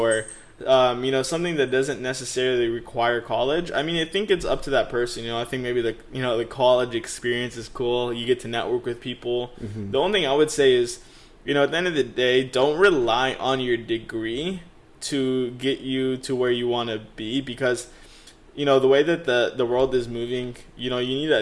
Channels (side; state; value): both; identical; correlation 1.00